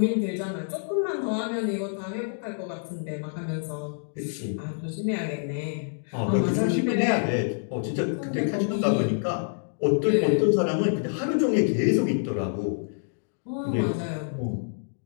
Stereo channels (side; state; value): right; silent; digital silence